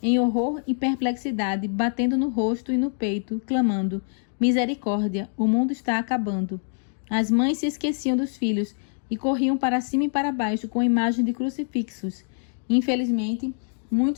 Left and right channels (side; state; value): right; silent; digital silence